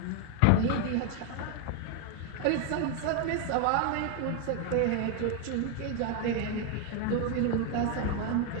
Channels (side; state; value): both; different; correlation 0.01